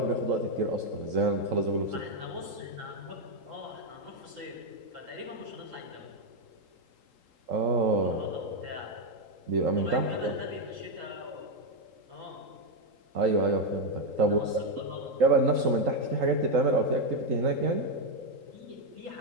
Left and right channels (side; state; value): left; late; 3.8 ms